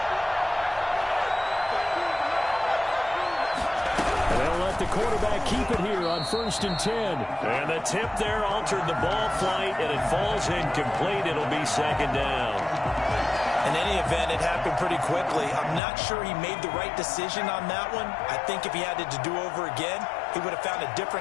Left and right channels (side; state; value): right; drops out; at 15.8 s